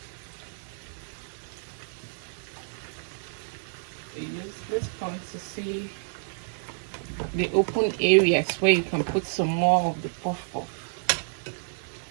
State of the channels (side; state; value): left; silent; 55 dB below the other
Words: This point to see the open areas where you can put some more of the puff puff.